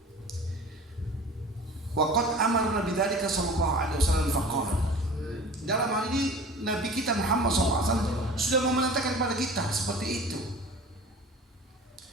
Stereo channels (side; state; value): both; normal; correlation 0.41